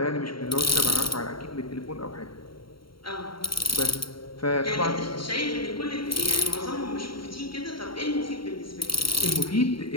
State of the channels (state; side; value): late; right; 0.73 ms